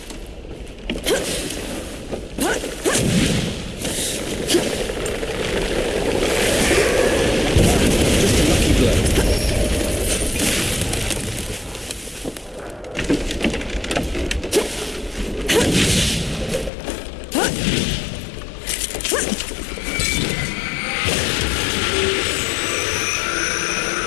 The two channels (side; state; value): right; drops out; at 16.7 s